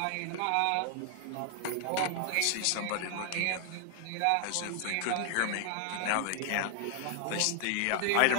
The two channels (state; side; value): different; both; correlation 0.00